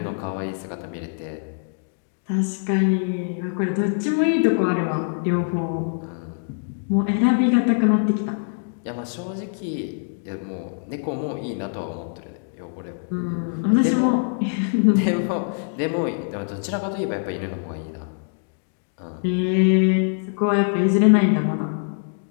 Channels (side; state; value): right; silent; digital silence